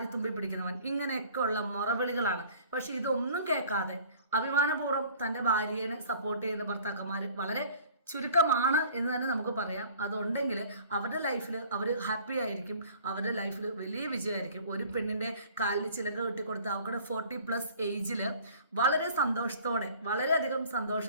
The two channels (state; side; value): inverted; both; correlation -0.50